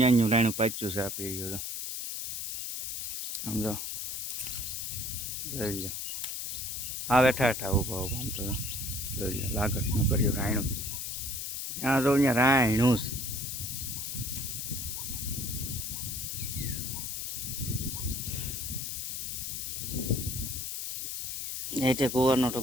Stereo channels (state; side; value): noise; left; hiss, 4 dB below the sound